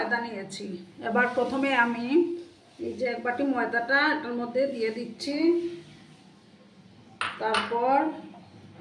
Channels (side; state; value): both; identical; correlation 1.00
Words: নিয়েছি। এবার প্রথমে আমি এই যে 1 বাটি ময়দাটা এটার মধ্যে দিয়ে দিচ্ছি। তারপর